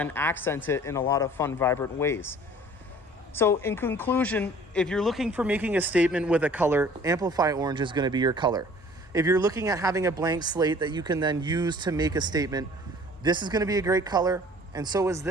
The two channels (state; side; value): normal; both; correlation 0.50